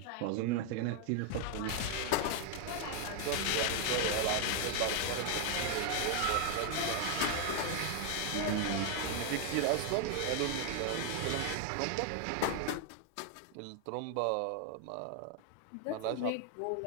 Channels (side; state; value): both; different; correlation 0.00